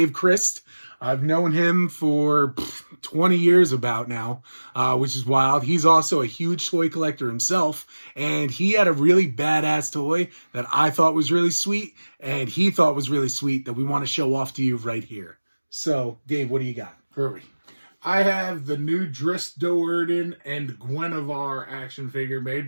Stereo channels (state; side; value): inverted; both; correlation -1.00